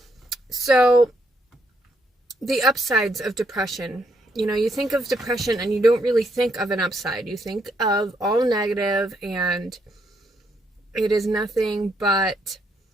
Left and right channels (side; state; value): both; normal; correlation 0.75